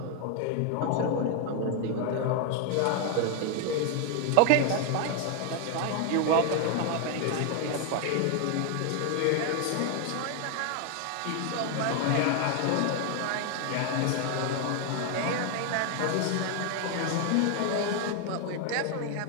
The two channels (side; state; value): both; different; correlation 0.00